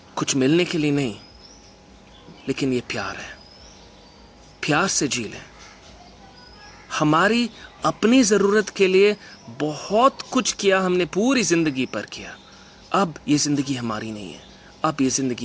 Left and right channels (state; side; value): identical; both; correlation 1.00